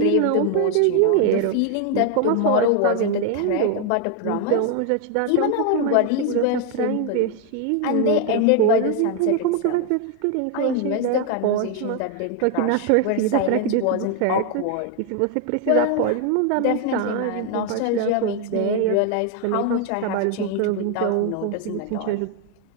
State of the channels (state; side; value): different; both; correlation 0.01